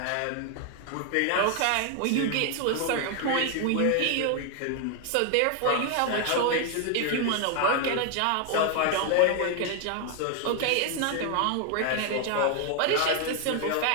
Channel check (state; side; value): different; both; correlation 0.00